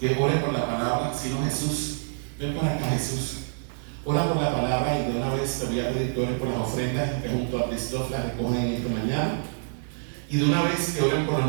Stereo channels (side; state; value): left; silent; digital silence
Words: ore por la palabra. Si no, Jesús, ven por acá, Jesús. Ora por la palabra y de una vez te voy a pedir que ores por las ofrendas que junto a Cristóf las recogen esta mañana. Y de una vez que oren por